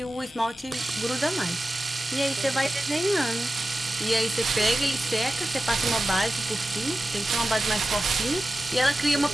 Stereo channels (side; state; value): both; normal; correlation 0.94